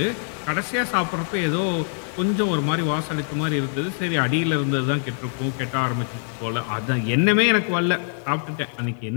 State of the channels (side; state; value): right; silent; 63 dB below the other